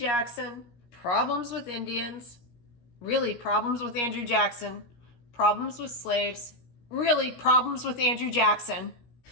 problems with Indians, really problems with Andrew Jackson, problems with slaves, really problems with Andrew Jackson,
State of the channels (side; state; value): right; late; 17 ms